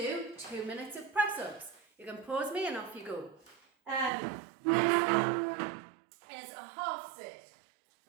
2 minutes of press ups. You can pause me and off you go. Next one is a half sit.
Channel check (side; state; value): left; drops out; at 4.1 s